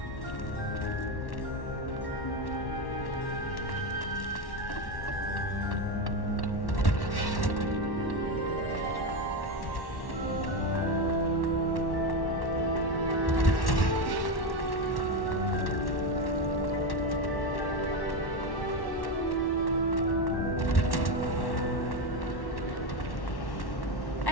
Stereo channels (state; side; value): late; right; 1.1 ms